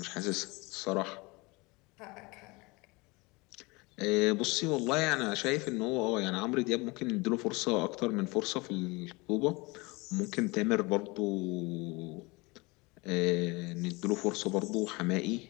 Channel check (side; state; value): right; quieter; 25.2 dB